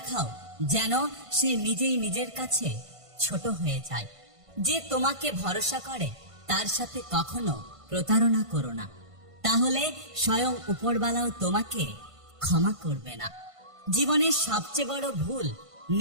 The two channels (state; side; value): late; left; 1.5 ms